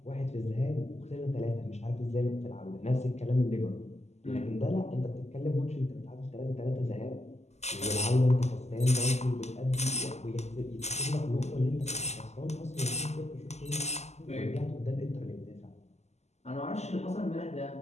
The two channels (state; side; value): late; right; 0.33 ms